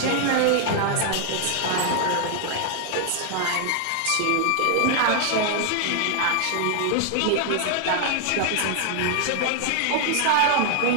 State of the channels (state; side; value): different; both; correlation 0.00